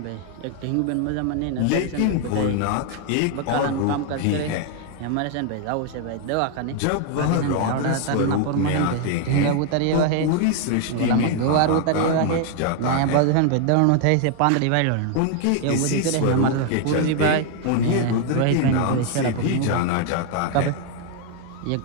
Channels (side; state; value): both; different; correlation 0.00